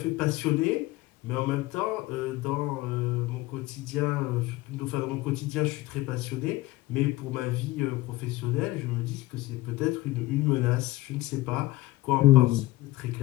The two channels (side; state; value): right; quieter; 18.3 dB